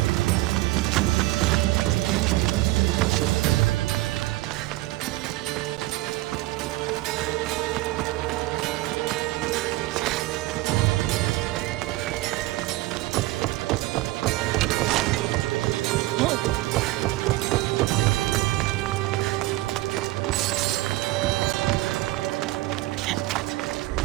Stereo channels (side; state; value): left; quieter; 18.4 dB